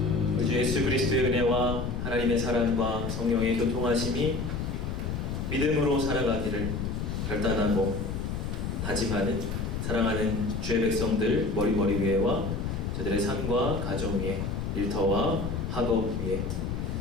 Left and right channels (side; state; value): left; noise; rumble, 3 dB below the sound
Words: 우리 주 예수 그리스도의 은혜와 하나님의 사랑과 성령의 교통하심이 믿음으로 살아가기를 결단하고 다짐하는 사랑하는 주의 백성들 머리 위에와 저들의 삶과 가정 위에, 일터와 학업 위에,